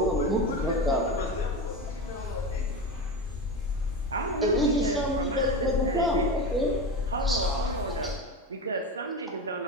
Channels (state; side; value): normal; both; correlation 0.23